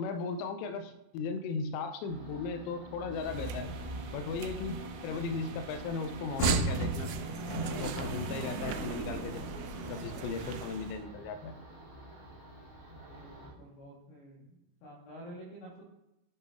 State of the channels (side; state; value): right; late; 29 ms